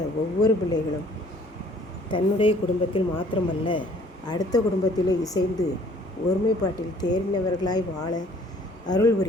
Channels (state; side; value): normal; both; correlation 0.57